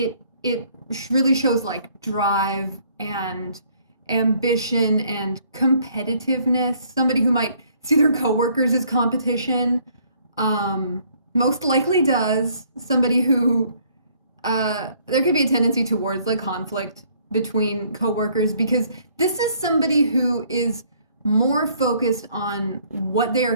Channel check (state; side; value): inverted; both; correlation -0.63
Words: really shows like drive and ambition and competitiveness. Somebody who might see their coworkers as competition, most likely does. Somebody who there could be a tendency towards like conflict between coworkers, because this is somebody who is more focused on what they are